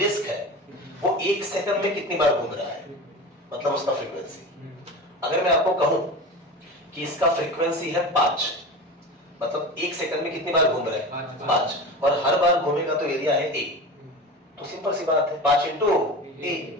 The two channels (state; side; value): normal; both; correlation 0.30